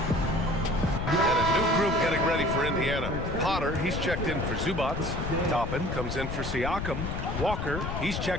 Getting ready for Indiana. Potter, he's checked in for Zubac. Toppin comes in for Siakam. Walker, he's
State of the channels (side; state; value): left; noise; rumble, 4 dB below the sound